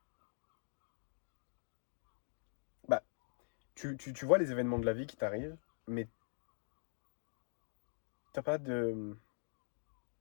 bah, tu vois les événements de la vie qui t'arrivent, mais t'as pas de,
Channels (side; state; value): right; silent; digital silence